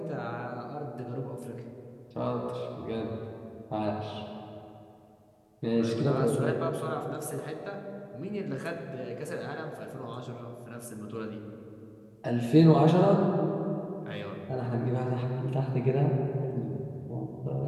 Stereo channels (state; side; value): identical; both; correlation 1.00